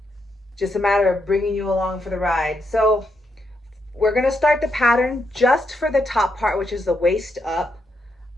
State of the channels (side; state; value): both; normal; correlation 0.80